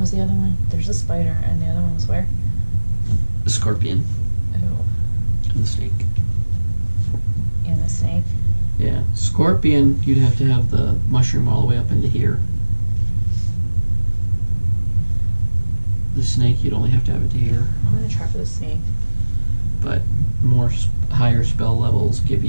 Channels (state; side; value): inverted; both; correlation -1.00